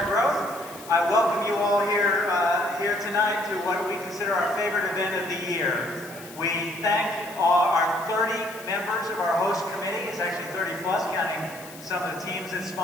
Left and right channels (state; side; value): noise; left; hiss, 18 dB below the sound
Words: Growth. I welcome you all here tonight to what we consider our favorite event of the year. We thank our 30 members of our host committee. It's actually 30 plus, counting some of the teams that